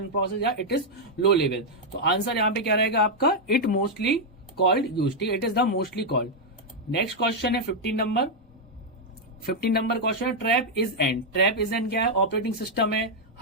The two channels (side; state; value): both; normal; correlation -0.02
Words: process, या इट इज लो लेवल। तो answer यहाँ पे क्या रहेगा आपका, it mostly called use, ठीक है, it is the mostly called. Next question है 15 नंबर क्वेश्चन है trap is end, trap is end क्या है, ऑपरेटिंग सिस्टम है,